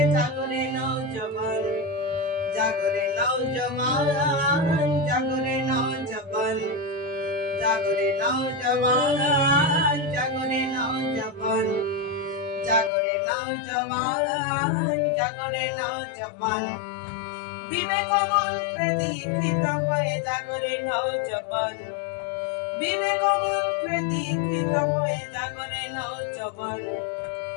জাগরে নওজওয়ান জাগরে নওজওয়ান জাগরে নওজওয়ান জাগরে নওজওয়ান জাগরে নওজওয়ান জাগরে নওজওয়ান জাগরে নওজওয়ান বিবেক মন্ত্রে দীক্ষিত হয়ে জাগরে নওজওয়ান বিবেক মন্ত্রে দীক্ষিত হয়ে জাগরে নওজওয়ান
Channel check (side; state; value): right; drops out; at 12.9 s